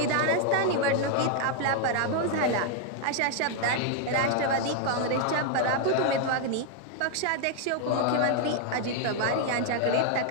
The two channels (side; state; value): both; different; correlation 0.00